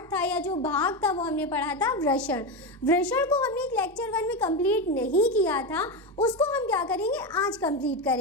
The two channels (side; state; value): both; normal; correlation 0.14